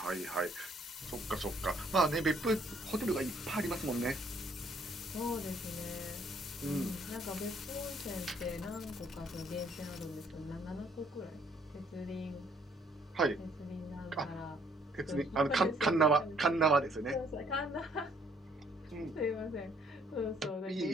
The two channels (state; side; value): normal; both; correlation 0.65